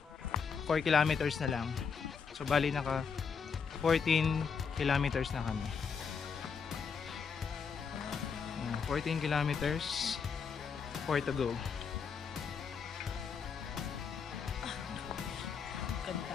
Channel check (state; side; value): quieter; right; 6.0 dB